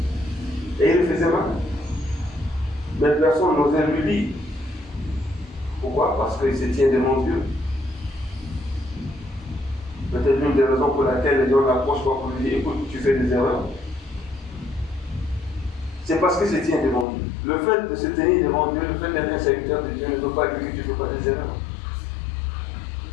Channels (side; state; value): right; drops out; at 17.1 s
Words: Et il le faisait mal. Mais personne n'osait lui dire. Pourquoi? Parce qu'il se tient devant Dieu. Peut-être l'une des raisons pour laquelle les gens l'approchent pas pour lui dire écoute, tu fais des erreurs. C'est parce qu'il se tient devant Dieu. Le fait de se tenir devant Dieu, le fait d'être un serviteur de Dieu ne veut pas dire que tu ne fais pas des erreurs.